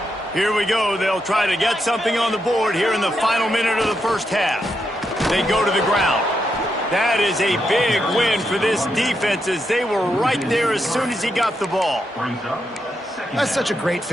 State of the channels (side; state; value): both; normal; correlation 0.82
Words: Here we go. They'll try to get something on the board here in the final minute of the first half. They go to the ground. That is a big win for this defense as they were right there as soon as he got the ball. That's such a great